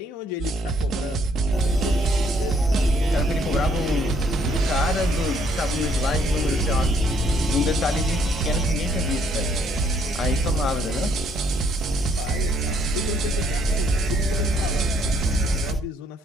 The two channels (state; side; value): normal; both; correlation 0.68